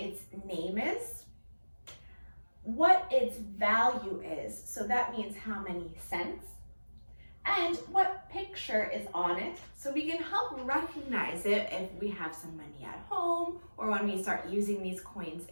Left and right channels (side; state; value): both; inverted; correlation -1.00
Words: name is, what its value is, so that means how many cents, and what picture is on it, so we can help recognize it if we have some money at home or when we start using these coins